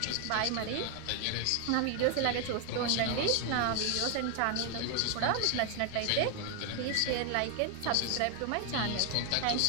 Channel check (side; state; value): both; different; correlation 0.00